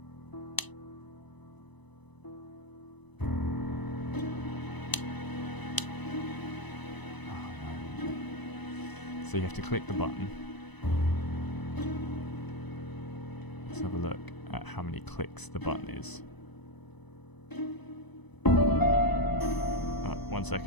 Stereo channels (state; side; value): late; right; 1.0 ms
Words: Oh, no. So you have to click the button. Let's have a look at how many clicks the button is. 1